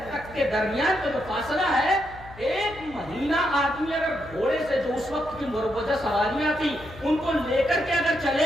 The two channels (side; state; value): left; noise; hum, 18 dB below the sound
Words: تک کے درمیان کا جو فاصلہ ہے, ایک مہینہ آدمی اگر گھوڑے سے جو اس وقت کی مروجہ سواریاں تھی ان کو لے کر کے اگر